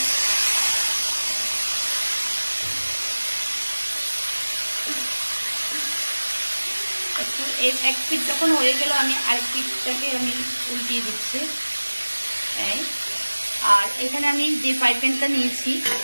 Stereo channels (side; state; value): both; inverted; correlation -1.00